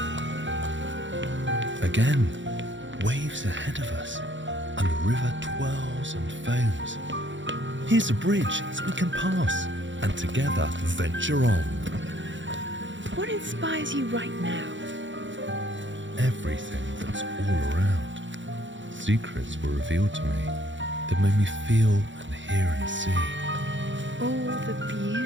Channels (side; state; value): left; late; 0.54 ms